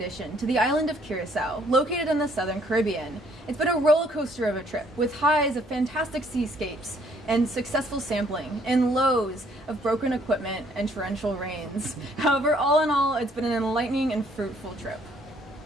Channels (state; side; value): normal; both; correlation 0.64